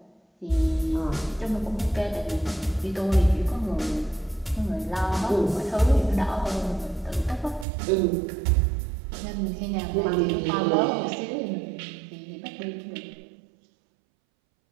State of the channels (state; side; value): drops out; left; at 7.7 s